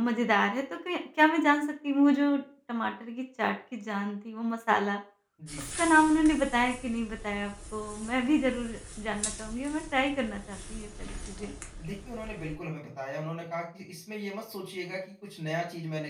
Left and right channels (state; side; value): identical; both; correlation 1.00